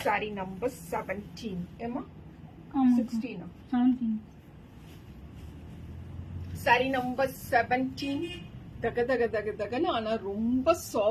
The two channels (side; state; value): both; identical; correlation 1.00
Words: saree number 17. ஏமா 16? 17. saree number 17. தக தக தக தகன்னு, ஆனா ரொம்ப